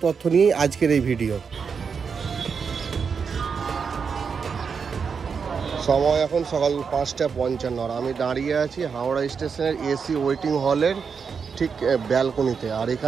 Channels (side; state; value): left; quieter; 6.0 dB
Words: তথ্য নিয়েই আজকের এই ভিডিও। সময় এখন সকাল 5:55 আর আমি দাঁড়িয়ে আছি হাওড়া স্টেশনের এসি ওয়েটিং হলের ঠিক ব্যালকনিতে। আর